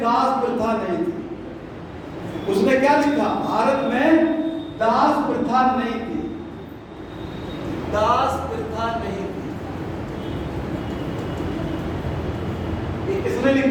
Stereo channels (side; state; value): both; identical; correlation 1.00